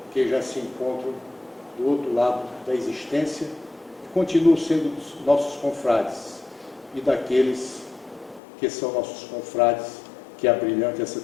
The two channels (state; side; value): drops out; right; at 8.4 s